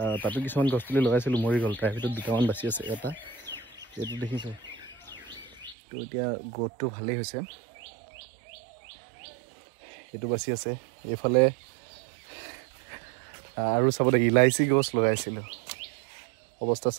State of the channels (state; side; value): drops out; left; at 5.8 s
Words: তাতো কিছুমান গছ পুলি লগাইছিলোঁ মৰি গ'ল, তাৰ ভিতৰত দুটামান বাচি আছে। এটা এইটো দেখিছোঁ, তো এতিয়া গ্ৰ'থটো ভালেই হৈছে, এইটো বাচি আছে। এইফালে আৰু চাব দে ইলাইচি গছ লগাইছিলোঁ, অৱস্থা